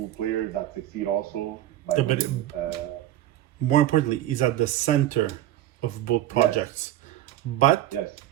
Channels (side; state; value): left; quieter; 13.2 dB